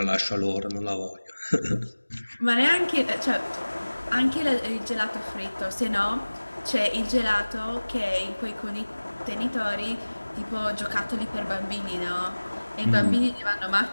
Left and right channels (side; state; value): both; inverted; correlation -1.00